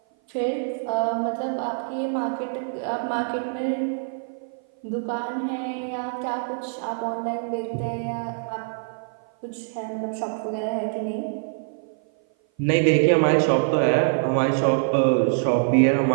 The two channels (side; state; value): left; silent; 56 dB below the other